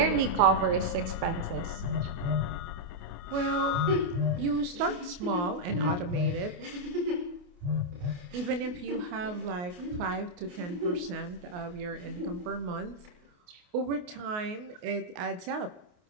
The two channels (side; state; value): left; late; 28 ms